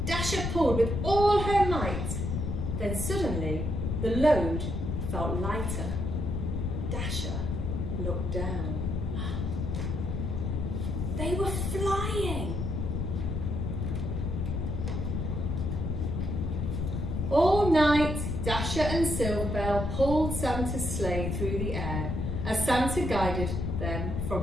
Dasher pulled with all her might. Then suddenly the load felt lighter. Dasher looked down. They were flying. All night, Dasher and Silverbell pulled Santa's sleigh through the air as Santa guided them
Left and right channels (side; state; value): left; noise; rumble, 2 dB below the sound